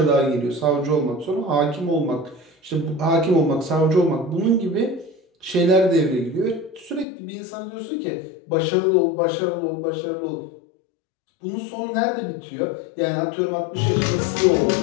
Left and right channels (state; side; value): drops out; right; at 7.1 s